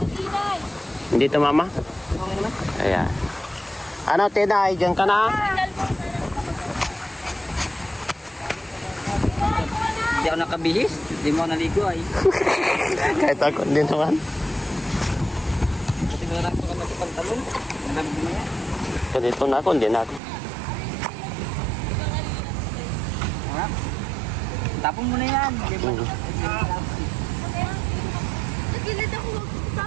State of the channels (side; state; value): left; drops out; at 20.2 s